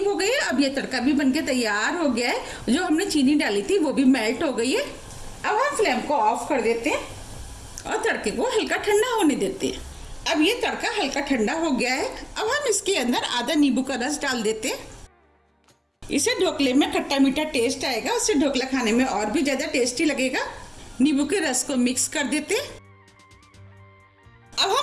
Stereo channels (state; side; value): identical; both; correlation 1.00